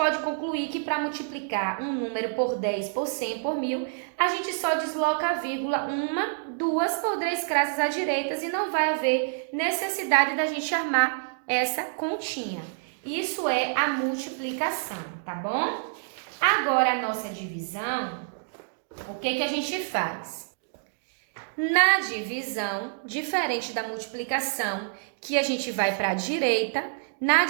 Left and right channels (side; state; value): left; silent; digital silence